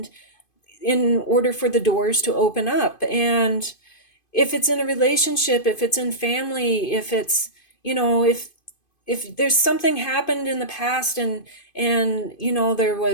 in order for the doors to open up. And if it's in a relationship, if it's in family, if it's, if there's something happened in the past, and there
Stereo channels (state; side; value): late; right; 2.5 ms